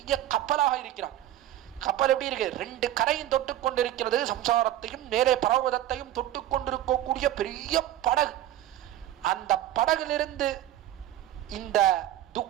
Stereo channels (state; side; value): quieter; left; 13.0 dB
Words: கப்பலாக இருக்கிறான். கப்பல் எப்படி இருக்கு? 2 கரையும் தொட்டு கொண்டிருக்கிறது, சம்சாரத்தையும் நேரே பரவதத்தையும் தொட்டு கொண்டிருக்கக்கூடிய பெரிய படகு. அந்த படகிலிருந்து இந்த